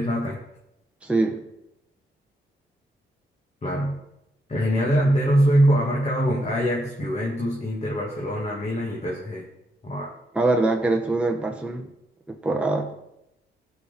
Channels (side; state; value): both; normal; correlation 0.80